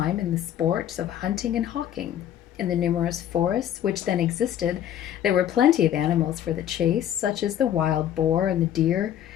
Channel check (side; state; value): right; quieter; 10.7 dB